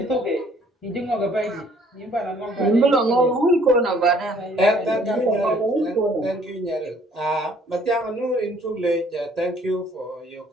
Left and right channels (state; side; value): normal; both; correlation 0.60